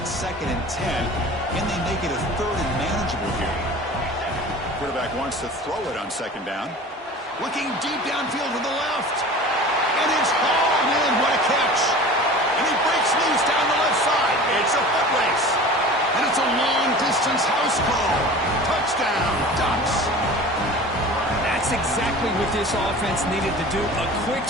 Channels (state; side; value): normal; both; correlation 0.39